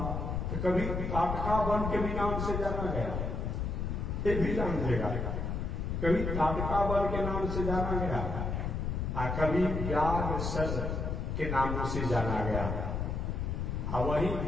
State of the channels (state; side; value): noise; left; rumble, 2 dB below the sound